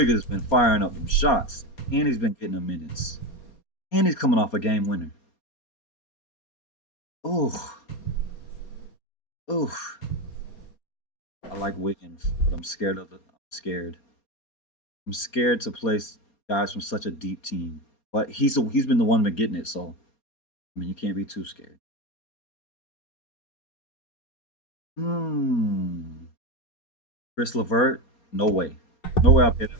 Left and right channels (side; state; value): right; late; 4.3 ms